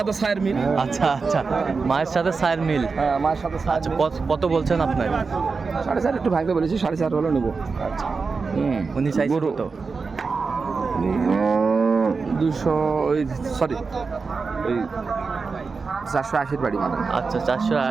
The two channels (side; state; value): left; quieter; 4.6 dB